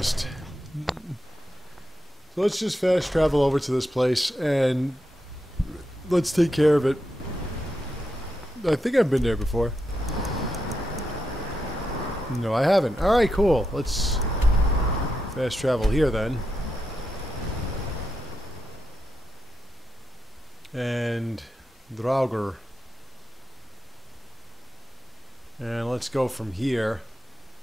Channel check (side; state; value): both; normal; correlation 0.86